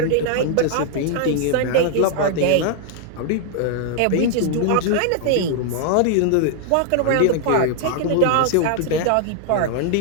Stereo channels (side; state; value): both; different; correlation 0.00